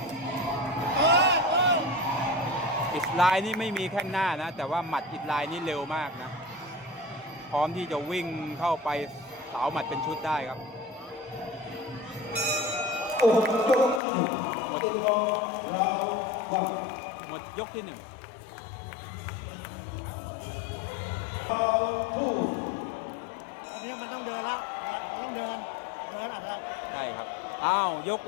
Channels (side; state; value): right; drops out; at 14.0 s